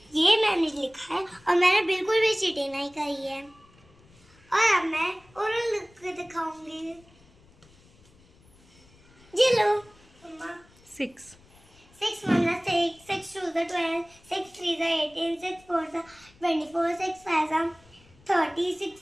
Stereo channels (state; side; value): noise; left; rumble, 28 dB below the sound